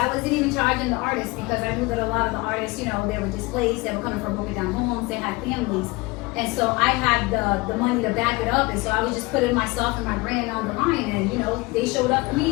wasn't even charging the artists because I knew that a lot of the artists, they were displaced. They were coming from broken down homes. They had families. And so I had the money to back it up. And so I was just putting myself and my brand on the line. And, they showed up for me.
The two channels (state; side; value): quieter; right; 23.7 dB